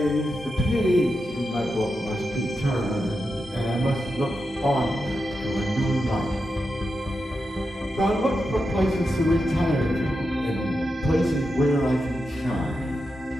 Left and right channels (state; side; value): normal; both; correlation 0.88